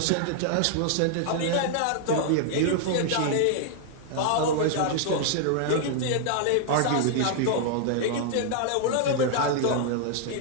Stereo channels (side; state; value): both; different; correlation 0.00